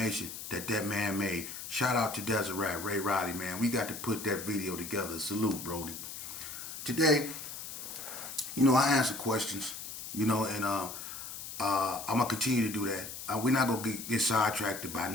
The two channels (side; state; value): left; noise; hiss, 9 dB below the sound